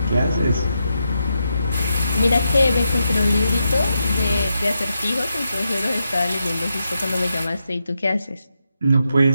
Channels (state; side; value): inverted; both; correlation -0.85